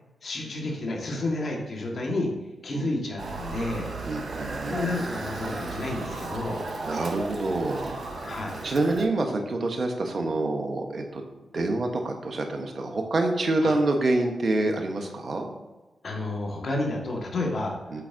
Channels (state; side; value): normal; both; correlation 0.86